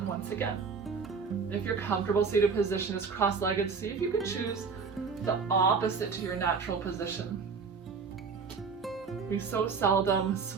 once again. If your comfortable seated position is cross-legged, see if you can choose the opposite to your natural position. We so seldom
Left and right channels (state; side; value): quieter; left; 5.4 dB